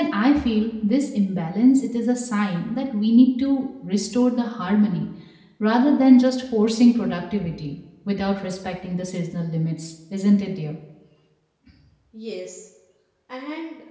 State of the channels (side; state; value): both; identical; correlation 1.00